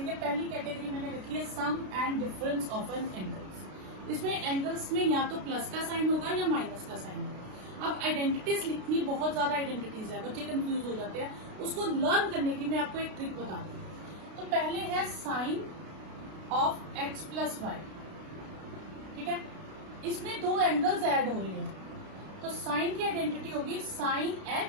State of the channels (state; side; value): late; left; 32 ms